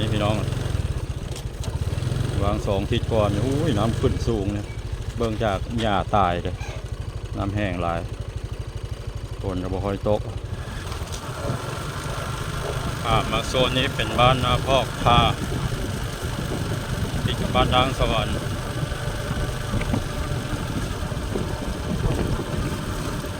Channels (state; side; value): identical; both; correlation 1.00